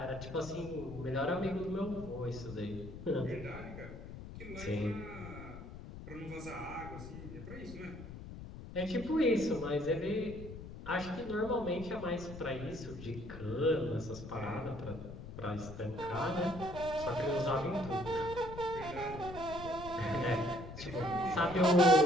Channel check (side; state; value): left; noise; rumble, 11 dB below the sound